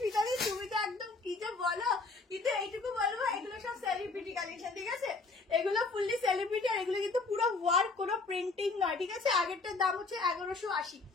তুমি তো একদম কি যে বলো। কিন্তু এইটুকু বলবো, এগুলো সব সেলিব্রিটি কালেকশন, ঠিক আছে। এগুলো ফুললি সেলিব্রিটি, আর এগুলো কিন্তু পুরো ওয়ার্ক, কোনো প্রিন্টিং নয়, ঠিক আছে। আগেরটার দাম হচ্ছে 1180।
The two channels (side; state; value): right; quieter; 3.8 dB